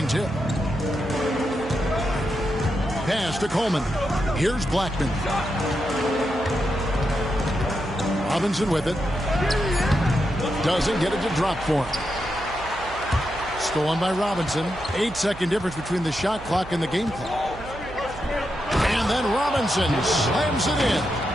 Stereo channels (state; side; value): noise; right; hum, 15 dB below the sound